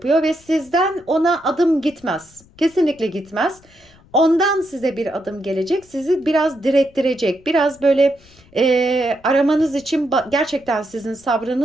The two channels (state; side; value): noise; left; rumble, 28 dB below the sound